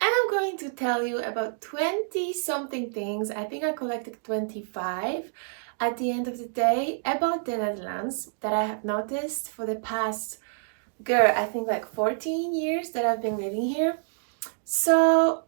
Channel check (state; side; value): silent; left; digital silence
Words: I'm going to tell you about 20 something things. I think I collected 25 at the end of the day about the Netherlands that I have noticed for the past, I think like 14 years that I've been living here. So,